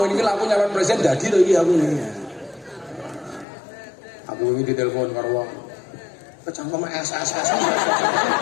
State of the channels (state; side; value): drops out; right; at 3.5 s